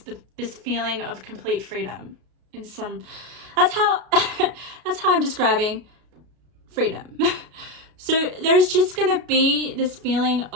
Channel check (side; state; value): left; late; 33 ms